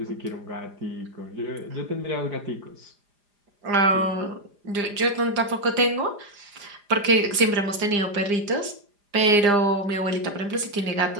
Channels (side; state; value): left; late; 4.9 ms